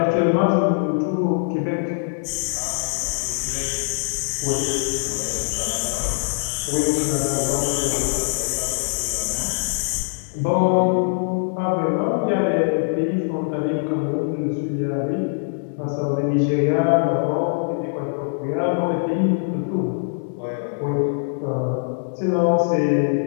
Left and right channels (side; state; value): right; silent; 64 dB below the other